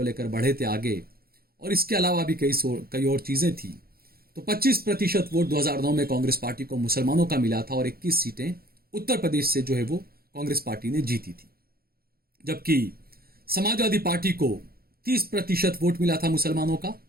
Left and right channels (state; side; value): late; left; 0.44 ms